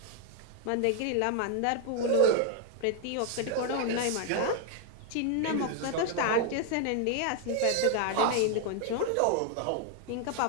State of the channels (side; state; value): both; different; correlation 0.00